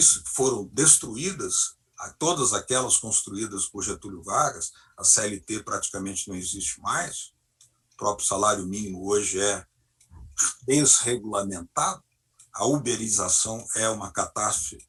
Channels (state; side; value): identical; both; correlation 1.00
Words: que foram destruídas, todas aquelas construídas por Getúlio Vargas. A CLT praticamente não existe mais, o próprio salário mínimo hoje é desregulamentado, a uberização é uma catástrofe